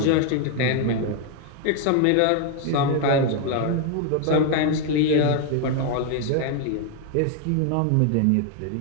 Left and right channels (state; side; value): different; both; correlation 0.01